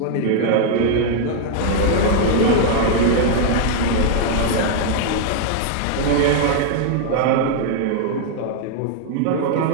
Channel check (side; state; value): both; different; correlation -0.01